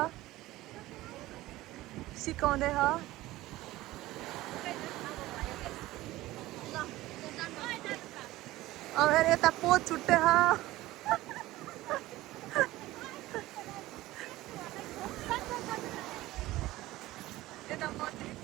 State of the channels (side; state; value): left; quieter; 17.2 dB